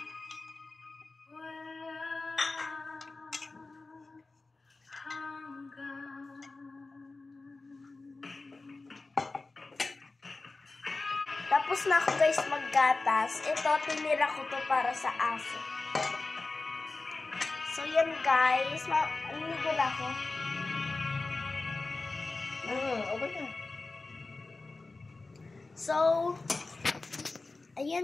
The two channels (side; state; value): right; quieter; 3.5 dB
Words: Tapos na ako, guys, maggatas. Ito, tinira ko to para sa aso. So, yan, guys. Maliligo na ako. Okay na. So,